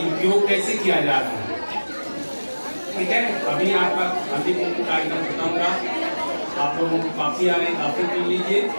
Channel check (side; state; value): both; inverted; correlation -1.00